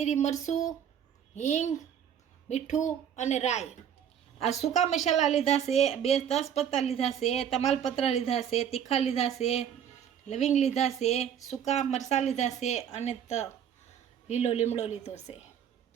મરચું, હિંગ, મીઠું અને રાઈ। આ સૂકા મસાલા લીધા છે, 2 તેજપત્તા લીધા છે, તમાલપત્ર લીધા છે, તીખા લીધા છે, લવિંગ લીધા છે, સૂકા મરચાં લીધા છે, અને લીલો લીમડો લીધો છે।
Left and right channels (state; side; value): quieter; left; 8.9 dB